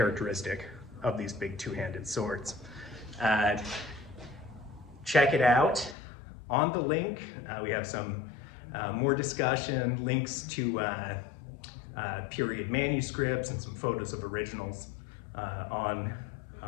of these big two-handed swords. Check it out on the link. We have some more discussion, links to period manuscripts and some photos of originals on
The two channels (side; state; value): right; drops out; at 6.0 s